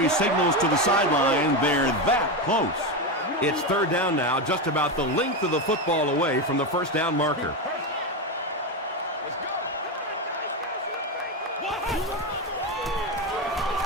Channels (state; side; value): normal; both; correlation 0.13